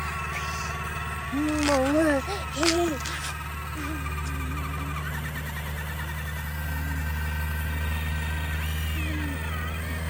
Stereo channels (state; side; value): identical; both; correlation 1.00